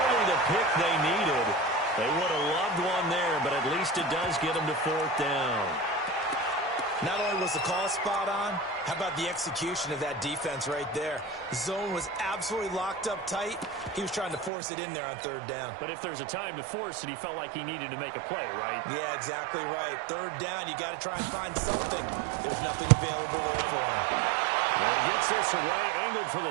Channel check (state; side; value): drops out; left; at 14.5 s